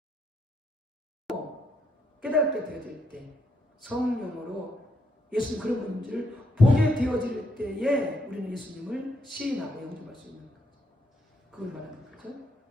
깨닫게 되어질 때, 성령으로 예수님 그런 분들을 보게 되어질 때에 우리는 예수님을 시인하고 영접할 수 있는 거죠. 그걸 말하는 거죠.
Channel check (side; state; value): both; normal; correlation 0.76